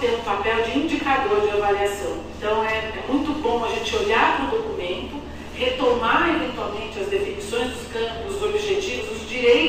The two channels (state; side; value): identical; both; correlation 1.00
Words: um papel de indicador de avaliação. Então, é muito bom a gente olhar para o documento, retomar eventualmente as definições dos campos, os objetivos, os